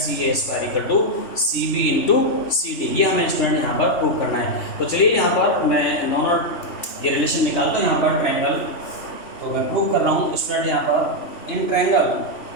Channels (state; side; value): late; right; 3.4 ms